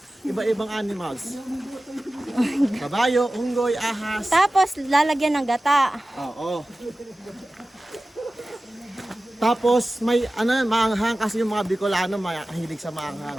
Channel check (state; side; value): normal; both; correlation 0.96